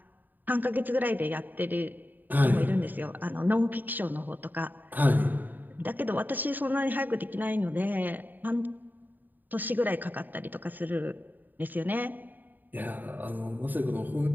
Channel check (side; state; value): left; late; 0.088 ms